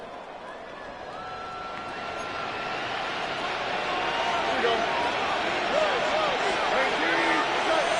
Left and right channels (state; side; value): identical; both; correlation 1.00